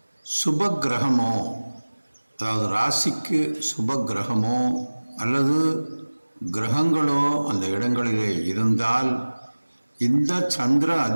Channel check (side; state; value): both; inverted; correlation -1.00